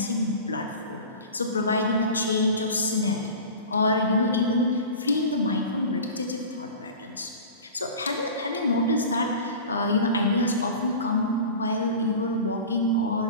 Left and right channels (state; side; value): inverted; both; correlation -0.36